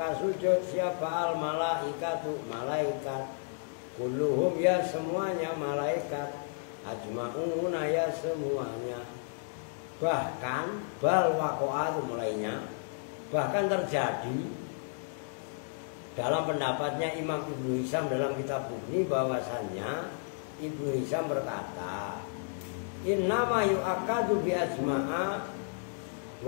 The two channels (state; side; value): silent; right; 56 dB below the other